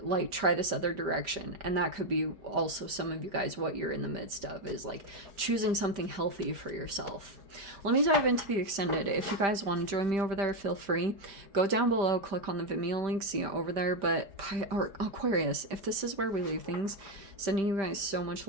like try this other direction. And that could be also some of you guys what you're in the midst of, is like choosing something healthy for yourself. Let me dive into the extended. If you guys want to join me over there, feel free. Go down below, click on the Vimeo link, see it over there. But or Aquarius, if this is where we leave things, sending you guys so much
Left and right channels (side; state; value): left; late; 5.1 ms